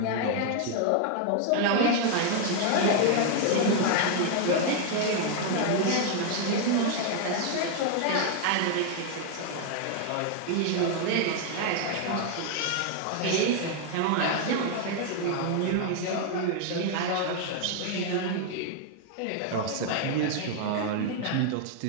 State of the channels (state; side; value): different; both; correlation 0.00